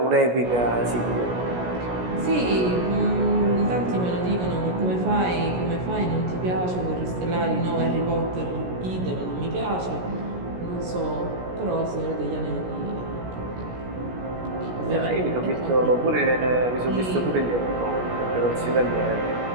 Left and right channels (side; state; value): left; late; 17 ms